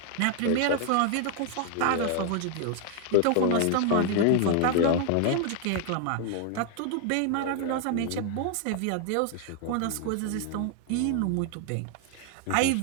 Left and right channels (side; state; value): both; different; correlation 0.00